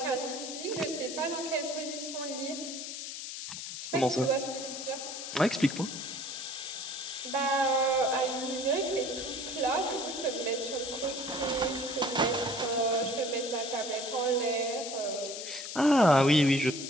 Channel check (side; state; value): left; noise; hiss, 7 dB below the sound